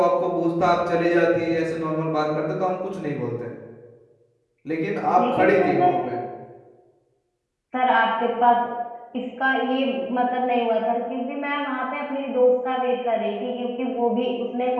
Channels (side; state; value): both; identical; correlation 1.00